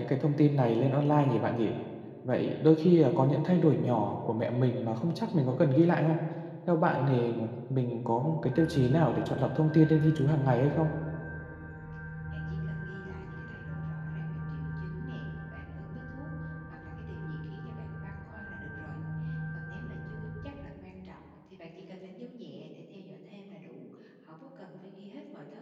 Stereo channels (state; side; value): identical; both; correlation 1.00